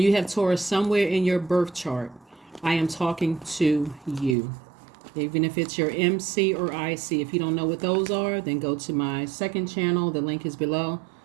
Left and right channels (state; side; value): drops out; left; at 4.4 s